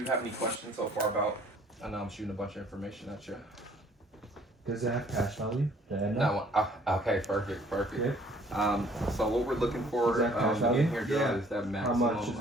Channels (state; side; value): normal; both; correlation 0.58